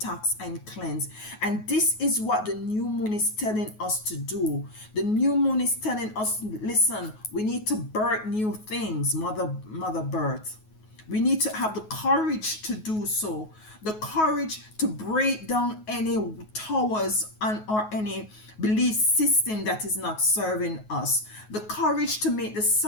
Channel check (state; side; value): late; right; 9.4 ms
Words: and cleanse. And this is what the new moon is telling us to do. The new moon is telling us, listen, we need to birth new things, mother birth. We need to have the courage to do so, the courage to break down any towers or any belief system that is not serving us, the courage to make the